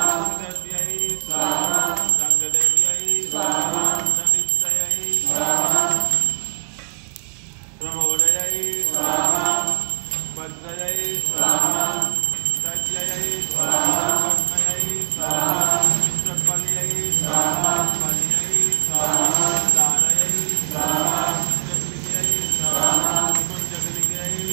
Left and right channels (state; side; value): silent; left; digital silence